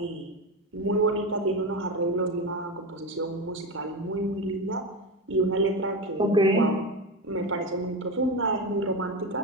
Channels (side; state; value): both; normal; correlation 0.19